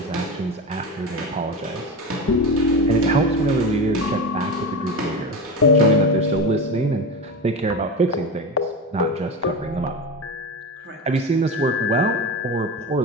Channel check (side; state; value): both; normal; correlation 0.22